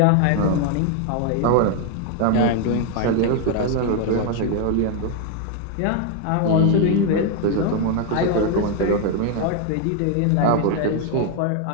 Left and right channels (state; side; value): different; both; correlation 0.01